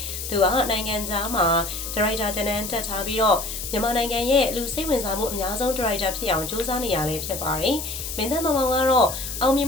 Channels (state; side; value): noise; left; hiss, 7 dB below the sound